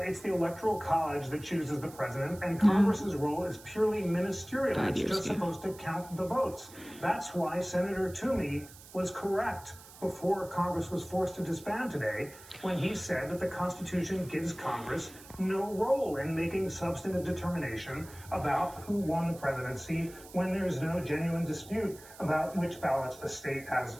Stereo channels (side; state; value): right; noise; hiss, 19 dB below the sound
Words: it's the Electoral College that chooses the president, and Congress's role is purely ministerial. It's just supposed to count the votes. That's why Senator Toomey was correct before Congress was forced to disband today, when he said that the Constitution gives Congress no role in making substantive determination about who won the presidency when there's no genuine dispute about which ballots the state has